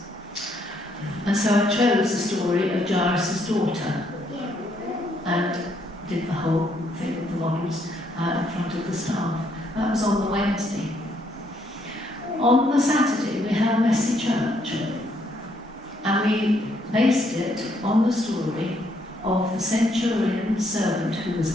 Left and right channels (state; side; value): normal; both; correlation 0.71